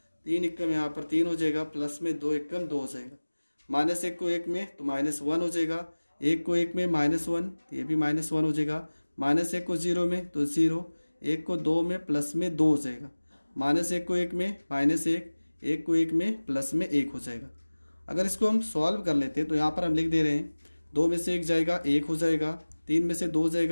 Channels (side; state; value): both; inverted; correlation -1.00